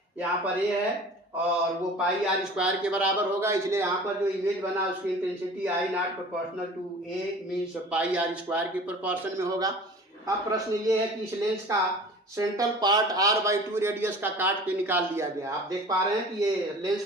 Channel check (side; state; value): both; normal; correlation 0.42